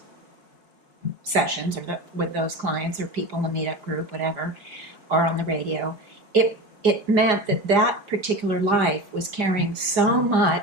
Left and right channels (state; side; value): late; left; 5.0 ms